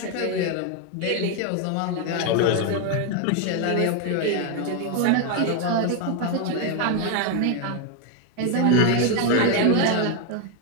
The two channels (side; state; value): both; different; correlation 0.01